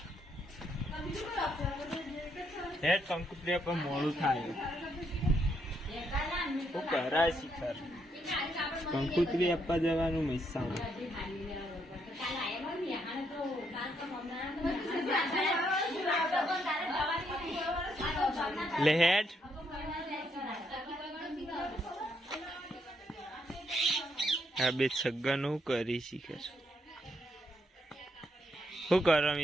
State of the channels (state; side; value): normal; both; correlation 0.75